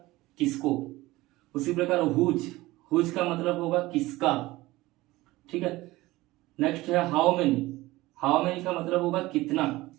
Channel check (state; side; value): quieter; left; 18.9 dB